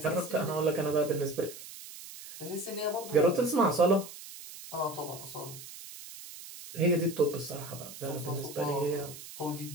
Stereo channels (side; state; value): right; noise; hiss, 14 dB below the sound